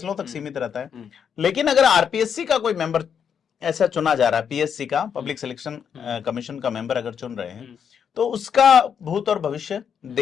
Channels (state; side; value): quieter; right; 7.5 dB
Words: तक सीमित रहता है। लेकिन अगर आरपीएससी का कोई मेंबर ऐसा चुना जा रहा है, पीएससी का, पब्लिक सिलेक्शन कमीशन का मेंबर अगर चुन रहे हैं, तो उसका भूत और भविष्य